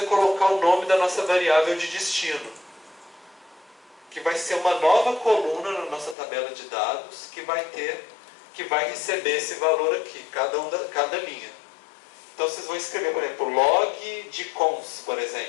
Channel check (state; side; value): drops out; right; at 6.2 s